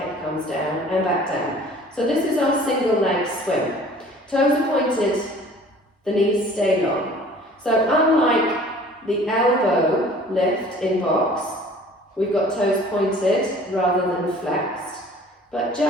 comes down and back down. So this is our single leg swing. Toes are pointed, the knees stay long. So unlike the elbow lift in box, we've got toes pointed rather than flexed. But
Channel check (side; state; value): both; normal; correlation 0.49